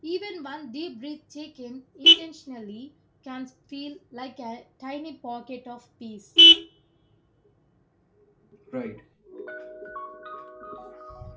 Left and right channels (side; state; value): both; identical; correlation 1.00